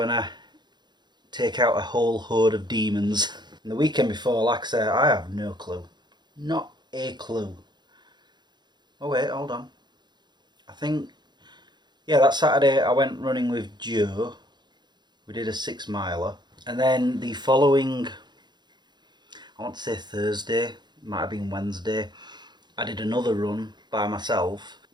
I take out a whole horde of demons. And the weekend before, like I said, I have no clue. Not a clue. Oh wait, hold on. I think, yeah, that Saturday I went running with Joe. We did a 6 miler, and then the following, I want to say Thursday, might have been Wednesday, I did another run by myself,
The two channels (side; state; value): left; late; 0.21 ms